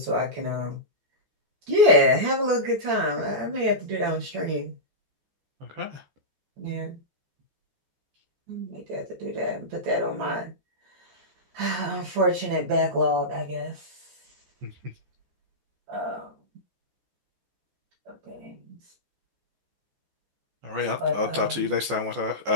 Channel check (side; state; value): left; late; 14 ms